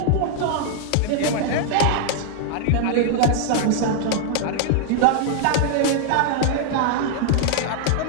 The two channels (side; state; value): both; different; correlation -0.01